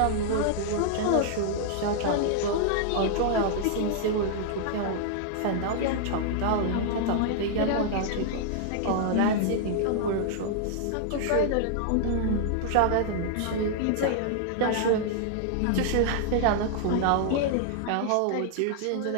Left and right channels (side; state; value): both; different; correlation -0.01